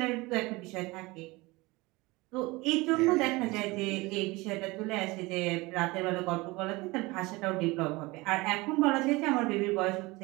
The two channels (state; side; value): quieter; left; 22.8 dB